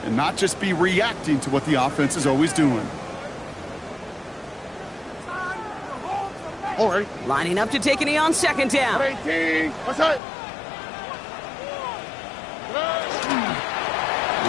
and not just be reacting to what the offense is always doing. All right. Lining up to take a knee on 2nd down. 18. What's that?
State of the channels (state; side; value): drops out; right; at 10.2 s